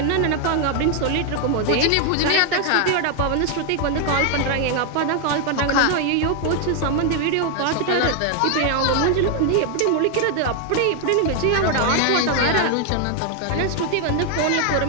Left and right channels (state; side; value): different; both; correlation 0.00